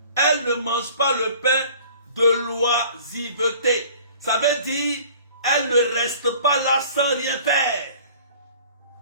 Elle ne mange pas le pain de l'oisiveté. Ça veut dire, elle ne reste pas là sans rien faire.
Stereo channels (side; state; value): both; inverted; correlation -0.49